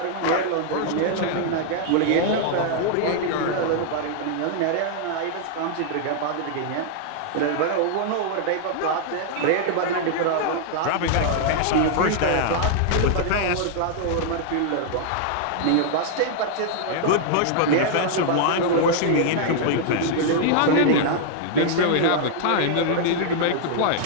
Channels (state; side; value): different; both; correlation -0.01